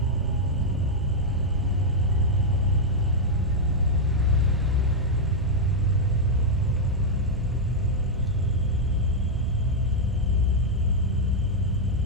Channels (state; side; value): normal; both; correlation -0.02